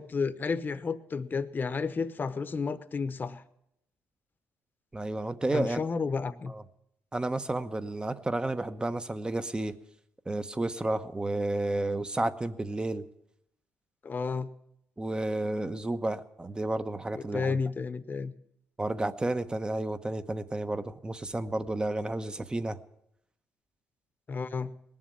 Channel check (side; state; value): both; normal; correlation 0.90